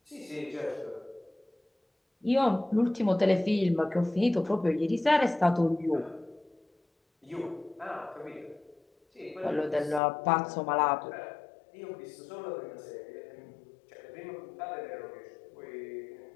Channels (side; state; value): right; drops out; at 10.0 s